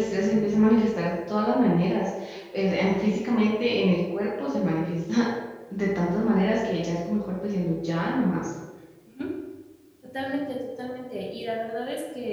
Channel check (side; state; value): both; identical; correlation 1.00